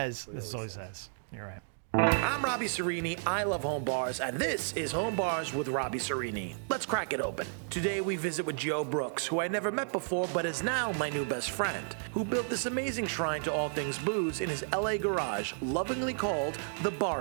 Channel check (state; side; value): silent; left; digital silence